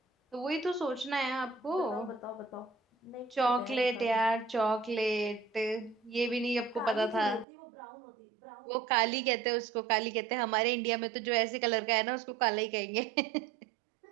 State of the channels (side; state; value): left; drops out; at 7.5 s